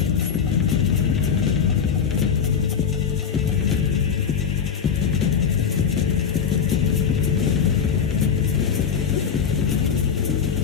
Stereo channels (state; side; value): quieter; right; 6.9 dB